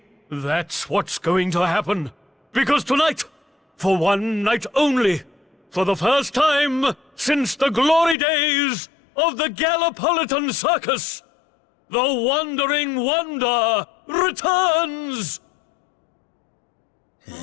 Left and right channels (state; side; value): drops out; right; at 8.2 s